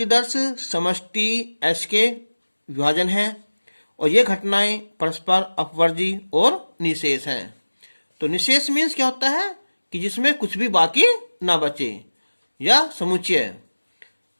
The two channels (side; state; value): both; inverted; correlation -1.00